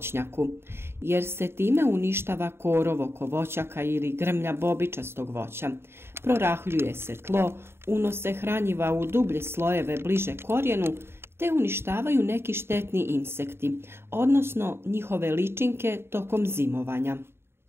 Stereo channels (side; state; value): left; late; 0.12 ms